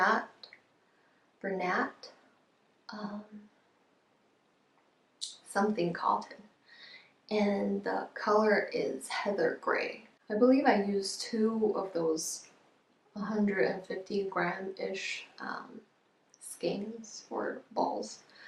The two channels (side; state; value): both; identical; correlation 1.00